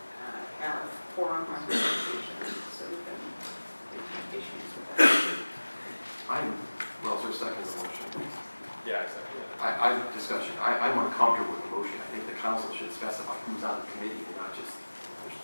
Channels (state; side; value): inverted; both; correlation -1.00